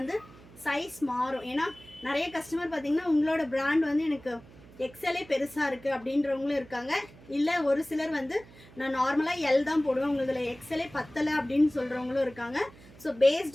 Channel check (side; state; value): right; noise; hum, 22 dB below the sound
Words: சைஸ் மாறும். ஏன்னா நிறைய கஸ்டமர் பார்த்தீங்கன்னா உங்களோட பிராண்ட் வந்து எனக்கு எக்ஸலே பெருசாக இருக்குது அப்படின்றவங்களும் இருக்காங்க. இல்லை ஒரு சிலர் வந்து நான் நார்மலாக எல் தான் போடுவேன், உங்களுக்கு எக்ஸலே பத்தலை அப்படின்னு சொல்கிறவங்களும் இருக்காங்க. ஸோ